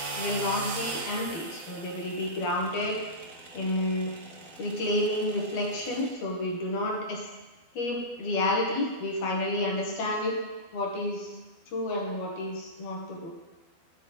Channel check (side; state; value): right; late; 12 ms